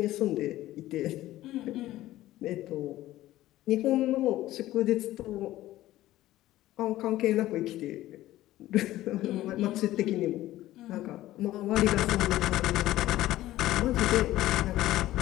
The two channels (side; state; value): right; quieter; 15.3 dB